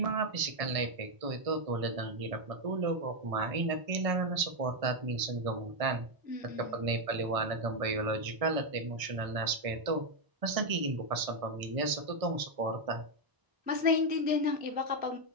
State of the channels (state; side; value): late; left; 1.6 ms